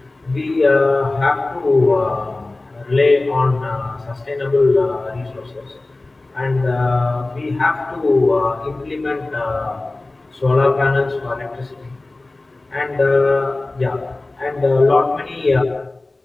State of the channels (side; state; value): right; quieter; 3.0 dB